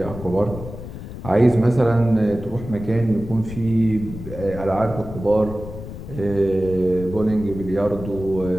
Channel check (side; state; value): left; noise; rumble, 11 dB below the sound